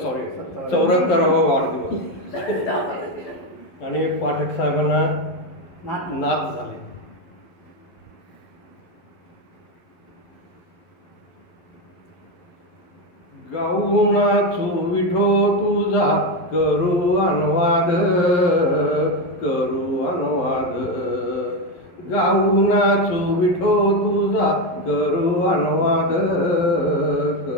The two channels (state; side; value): late; right; 11 ms